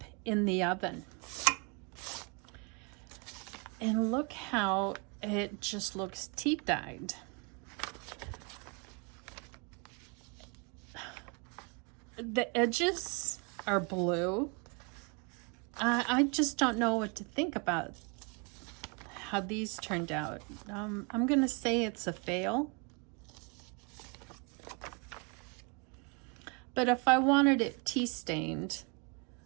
in the oven. And look how it just looks tea-dyed. The edges are blue. I just don't know what to think about how these turned out. I'm gonna say it's a fail. But if I wanted it tea stained,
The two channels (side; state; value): left; quieter; 32.4 dB